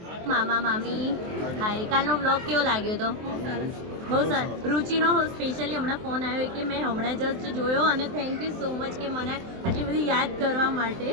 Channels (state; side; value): late; left; 23 ms